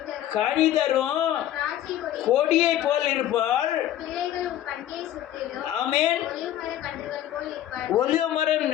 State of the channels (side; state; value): right; quieter; 12.3 dB